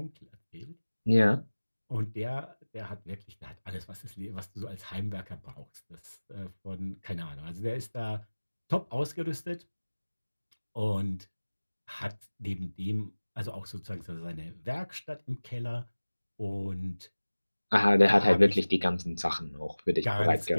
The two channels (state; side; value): inverted; both; correlation -1.00